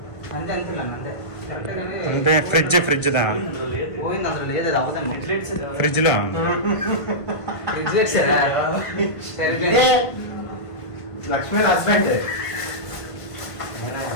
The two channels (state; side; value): late; right; 1.5 ms